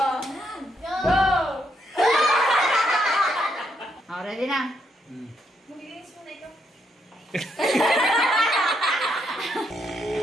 Go! Ready na? Magiginis mo na ito.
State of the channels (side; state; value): both; normal; correlation 0.77